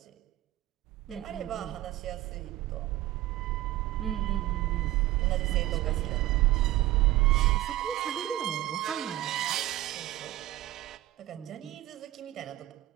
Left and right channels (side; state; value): left; quieter; 15.8 dB